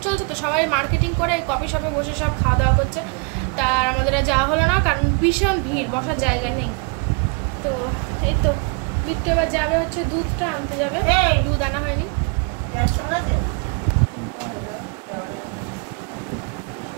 চলছে তো সবাই মার্কেটিং করে কফি শপে বসে সব খাওয়া দাওয়া করছে। তার আমাদের আর যাওয়া হলো না, কারণ ভীষণ ভিড়, বসার জায়গা নেই। তো এই তো বিট্টু এবার যাবে হচ্ছে দুধটা আনতে যাবে, দুধ আনা হয়নি।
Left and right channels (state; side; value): quieter; left; 34.3 dB